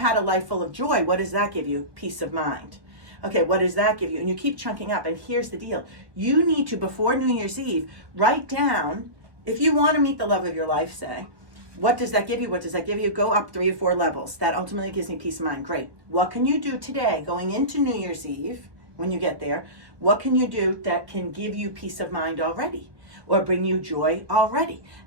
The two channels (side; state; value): left; late; 1.2 ms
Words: a life full of joy, what does that give you? Peace of mind. Okay, what does that give you? And you keep chunking up. And here's the deal. You need to, before New Year's Eve, write down, if you want to meet the love of your life, say, what does that give you? What does that give you? Go up 3 or 4 levels. That ultimately gives me peace of mind. Great. What can you do today, going into New Year's Eve, when you get there? What can you do that can give you peace of mind already? Or bring you joy already?